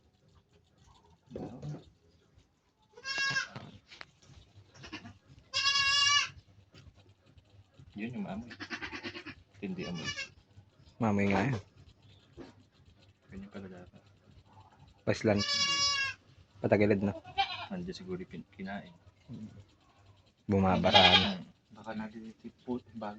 Yun yung amoy. Hindi amoy. Mamay nga yan. Ganyan pala dapat. Paslan. Patagilid na. Nandiyan siguro kinain. Bumabaraan. Baka nalilipot,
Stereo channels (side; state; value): both; identical; correlation 1.00